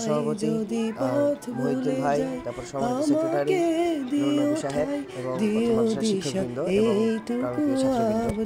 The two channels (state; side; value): identical; both; correlation 1.00